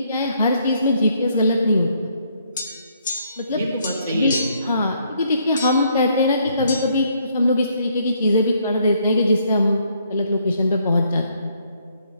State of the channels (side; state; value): both; inverted; correlation -0.70